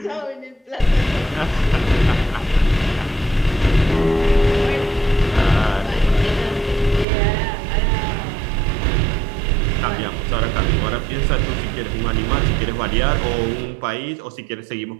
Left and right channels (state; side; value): drops out; left; at 7.1 s